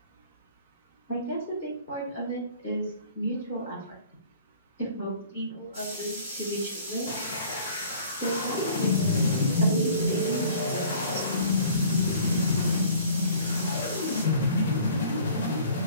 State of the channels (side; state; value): both; inverted; correlation -0.50